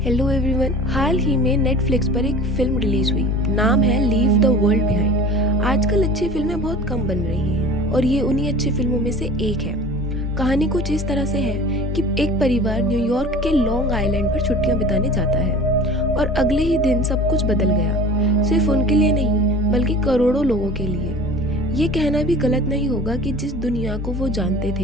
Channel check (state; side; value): normal; both; correlation 0.41